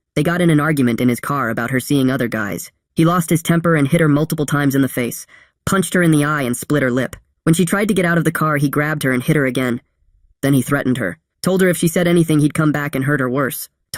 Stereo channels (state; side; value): identical; both; correlation 1.00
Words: They got in an argument in his car about her seeing other guys. He lost his temper and hit her multiple times in the face, punched her in the eye and split her lip. When she tried to get out of the car, he grabbed her and hit her again. Then he threatened her. Told her if she said anything he'd come back and hurt her worse.